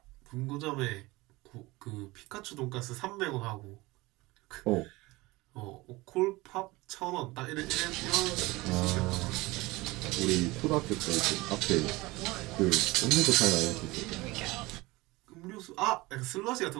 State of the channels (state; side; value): quieter; left; 21.4 dB